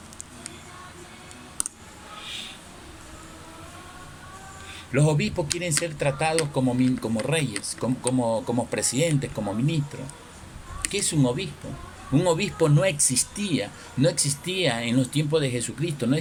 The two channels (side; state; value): both; identical; correlation 1.00